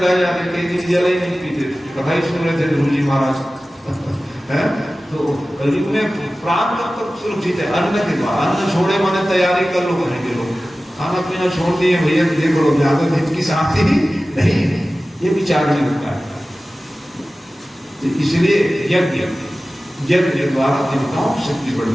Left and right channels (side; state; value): both; normal; correlation 0.96